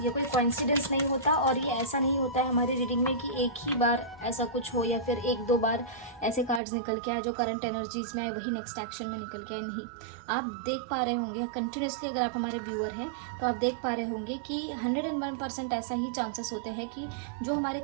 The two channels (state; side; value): drops out; left; at 6.6 s